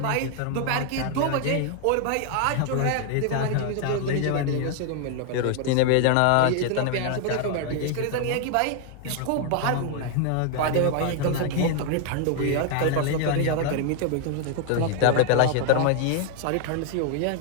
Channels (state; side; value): different; both; correlation 0.00